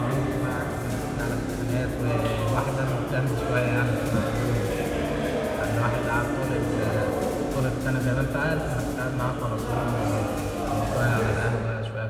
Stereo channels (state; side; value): identical; both; correlation 1.00